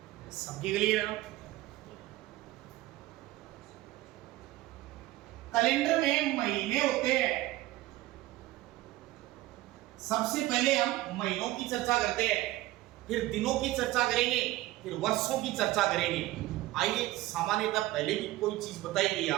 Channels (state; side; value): quieter; left; 17.0 dB